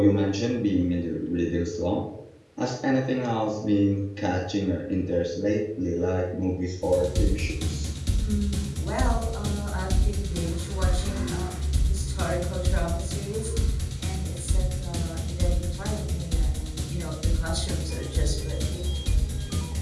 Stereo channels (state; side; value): identical; both; correlation 1.00